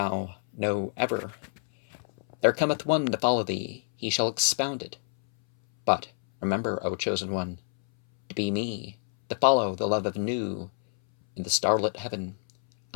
know ever. There cometh one to follow thee, he shall expound it. But remember, O chosen one, to be me, to follow the love of new in the starlit heaven.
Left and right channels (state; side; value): silent; right; 60 dB below the other